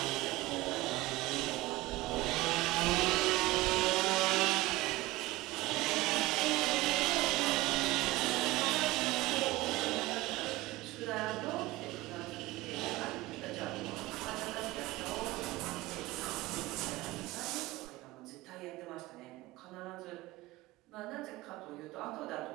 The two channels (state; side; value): quieter; left; 19.0 dB